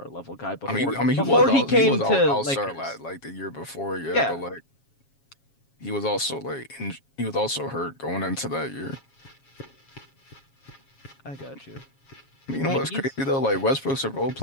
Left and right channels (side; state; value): right; late; 7.3 ms